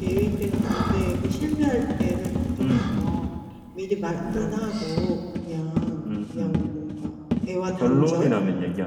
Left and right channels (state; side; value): identical; both; correlation 1.00